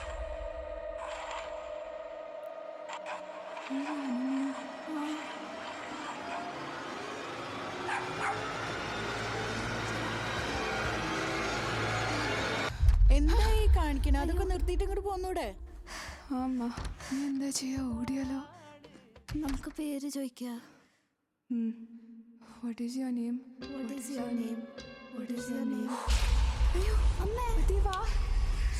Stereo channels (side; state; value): both; identical; correlation 1.00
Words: എന്തായി കാണിക്കണ? അതൊക്കെ നിർത്തിയിട്ട് ഇങ്ങോട്ട് പോന്നൂടെ? അമ്മ നീ എന്താ ചെയ്യാ? ഓടിയാലോ? നമുക്ക് പേര് ചോദിക്കാം. What is your name? What is your name? What is your name? അയ്യോ അമ്മേ ദേവാ.